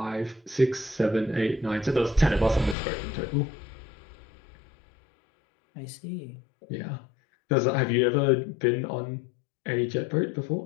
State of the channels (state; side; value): drops out; right; at 2.8 s